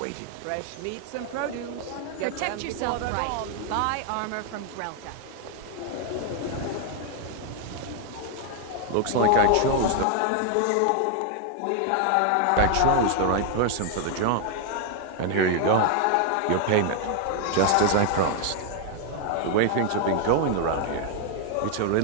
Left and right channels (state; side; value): different; both; correlation 0.00